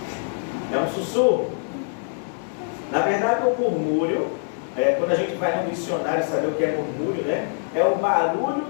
É um sussurro. Na verdade, o murmúrio, quando a gente vai no dicionário saber o que é murmúrio, né? É o barulho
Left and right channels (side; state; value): right; silent; digital silence